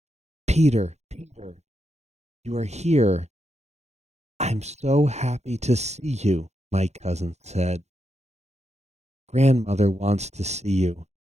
Peter, Peter, you are here. I'm so happy to see you, my cousin said. Grandmother wants to see you.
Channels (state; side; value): late; left; 0.32 ms